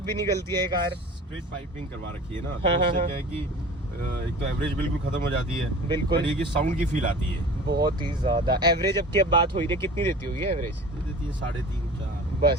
भी निकलती है कार। स्ट्रेट पाइपिंग करवा रखी है ना, तो उससे क्या है कि एक तो एवरेज बिल्कुल खत्म हो जाती है। बिल्कुल। ये कि साउंड की फील आती है बहुत ही ज्यादा। एवरेज अब की अब बात हो रही है, कितनी देती होगी एवरेज? देती है 3.5-4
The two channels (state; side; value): normal; both; correlation 0.40